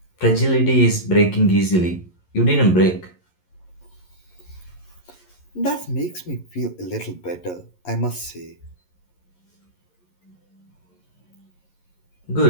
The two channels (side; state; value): right; late; 11 ms